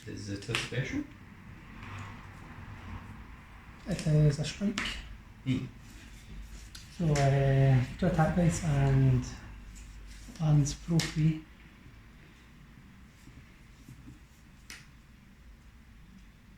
Is it a special? It is a strike. Hmm. So 2 attack dice and lands pro free.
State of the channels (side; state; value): both; identical; correlation 1.00